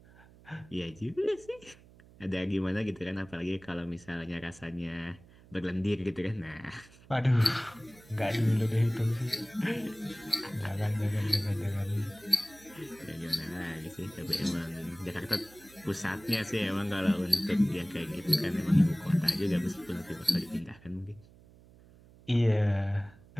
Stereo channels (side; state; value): right; noise; hum, 24 dB below the sound